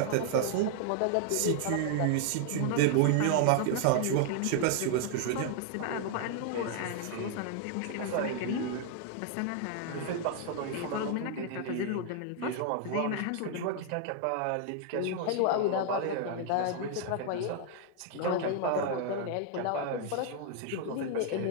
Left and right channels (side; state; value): both; different; correlation 0.00